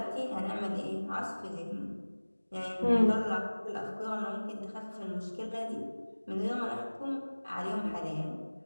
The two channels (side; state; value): both; inverted; correlation -1.00